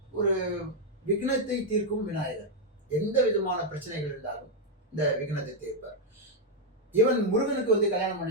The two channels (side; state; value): both; normal; correlation -0.01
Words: ஒரு விக்னத்தை தீர்க்கும் விநாயகர். எந்த விதமான பிரச்சனைகள் இருந்தாலும் இந்த விக்னத்தை தீர்ப்பார். இவன் முருகனுக்கு கல்யாணம்